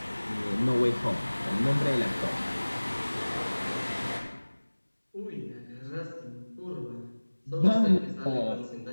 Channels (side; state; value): both; inverted; correlation -1.00